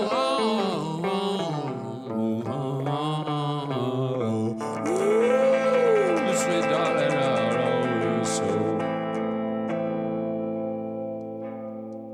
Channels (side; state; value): both; identical; correlation 1.00